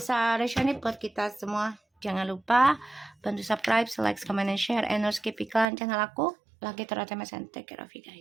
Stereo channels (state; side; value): drops out; left; at 5.7 s